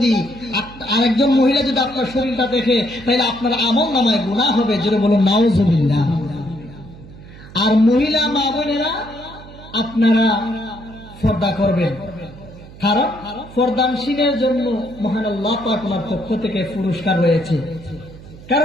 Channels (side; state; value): right; noise; hum, 18 dB below the sound